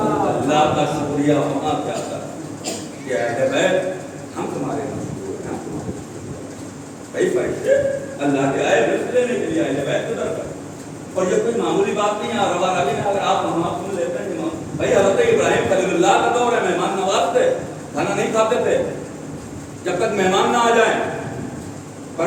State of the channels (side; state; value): both; identical; correlation 1.00